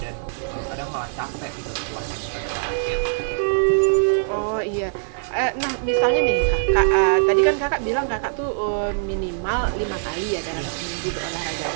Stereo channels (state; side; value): silent; left; 64 dB below the other